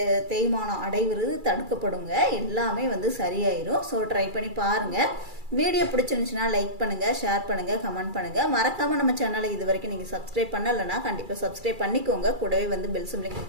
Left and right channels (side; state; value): left; late; 2.3 ms